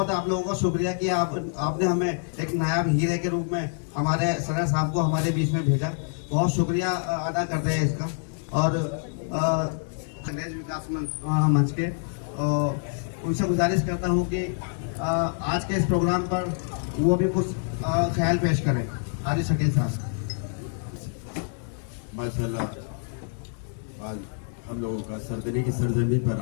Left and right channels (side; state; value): right; silent; 58 dB below the other